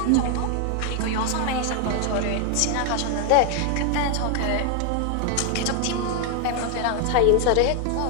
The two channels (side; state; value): both; different; correlation 0.00